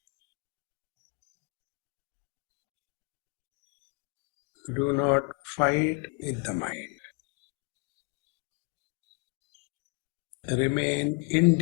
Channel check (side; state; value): right; quieter; 32.7 dB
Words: Do not fight with the mind. Remain